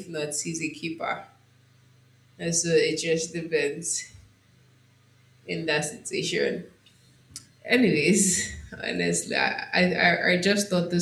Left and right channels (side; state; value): both; identical; correlation 1.00